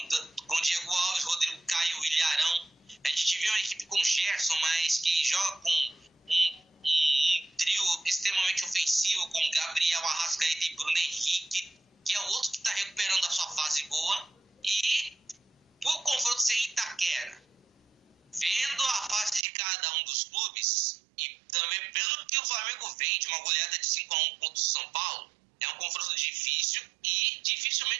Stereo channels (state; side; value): drops out; left; at 19.4 s